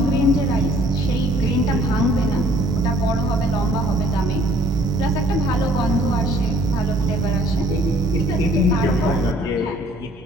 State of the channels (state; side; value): normal; both; correlation 0.58